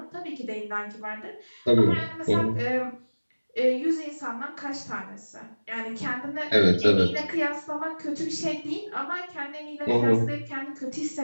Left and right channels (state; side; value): inverted; both; correlation -1.00